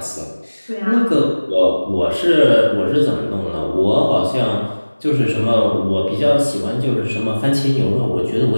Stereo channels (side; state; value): both; inverted; correlation -1.00